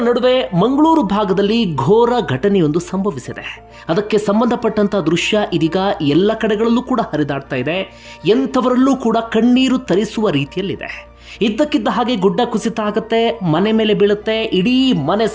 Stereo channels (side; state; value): both; identical; correlation 1.00